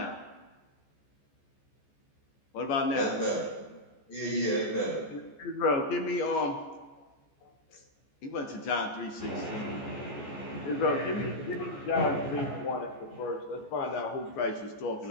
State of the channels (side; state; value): right; late; 14 ms